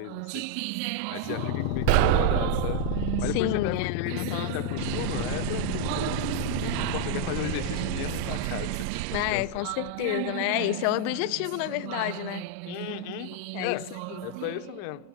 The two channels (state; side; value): different; both; correlation 0.00